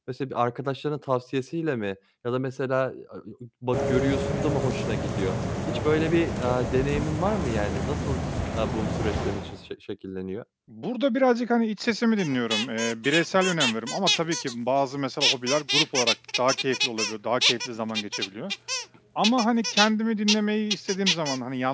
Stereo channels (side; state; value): both; identical; correlation 1.00